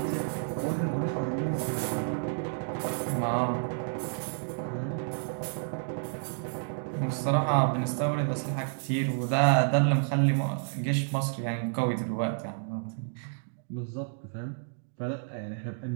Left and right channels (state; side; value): silent; left; digital silence